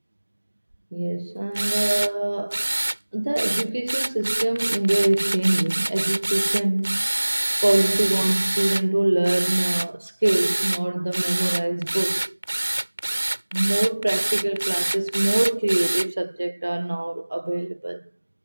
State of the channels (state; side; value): inverted; both; correlation -1.00